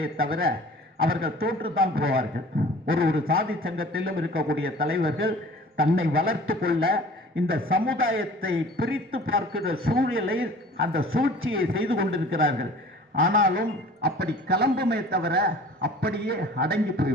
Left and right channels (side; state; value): both; normal; correlation 0.46